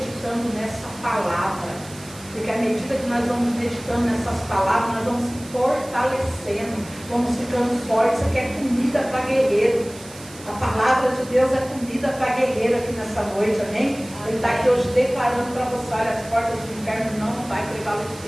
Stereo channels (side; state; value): right; noise; hiss, 18 dB below the sound